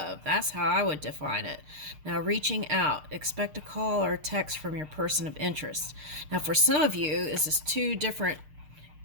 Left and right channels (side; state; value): left; late; 6.6 ms